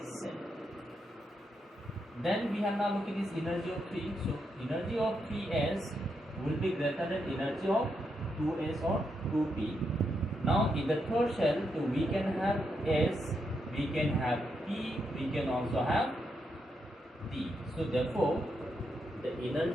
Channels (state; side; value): normal; both; correlation 0.82